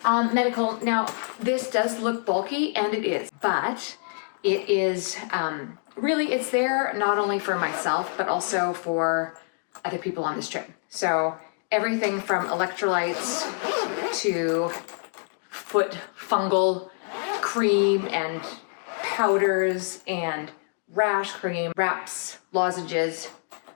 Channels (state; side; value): silent; right; 56 dB below the other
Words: Medical. Now, this does look bulky, and it is, but it is really, it's there not only for myself, but also for other people on this trip. So everything from electrolytes to foot fungal cream and powders and rash cream, wraps, lozenges,